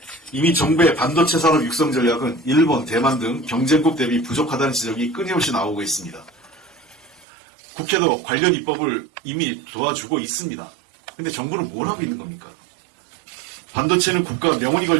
이미 정부의 반도체 산업 육성 전략은 일본, 대만 등 경쟁국 대비 부족하다는 지적이 끊임없이 나오고 있습니다. 국회도 관련 입법을 이미 도와주고 있습니다. 근데 정부는 뭘 하고 있는 겁니까? 반도체는 국가 명운이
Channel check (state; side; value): drops out; left; at 7.2 s